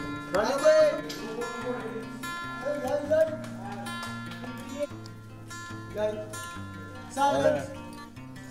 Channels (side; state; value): both; identical; correlation 1.00